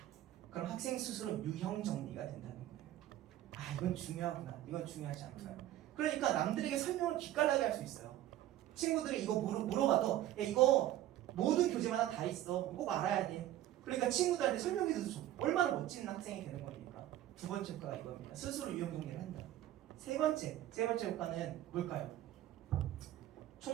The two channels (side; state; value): left; quieter; 13.5 dB